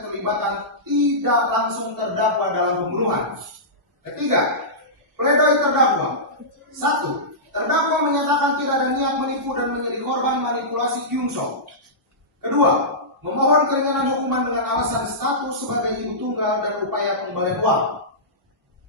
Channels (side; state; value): both; normal; correlation -0.17